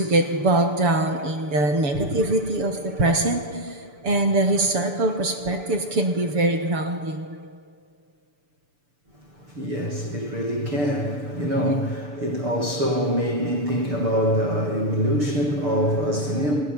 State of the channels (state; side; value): late; left; 6.9 ms